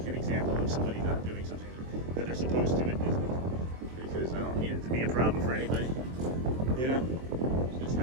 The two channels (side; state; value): left; late; 23 ms